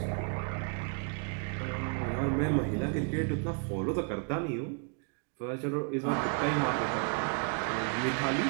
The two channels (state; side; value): quieter; left; 36.6 dB